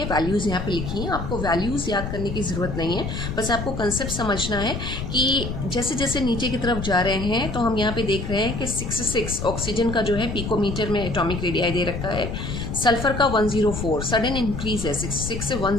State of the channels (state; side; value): noise; left; rumble, 5 dB below the sound